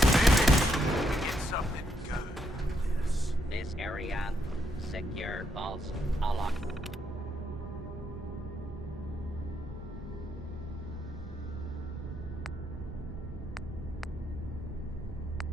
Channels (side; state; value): both; normal; correlation 0.77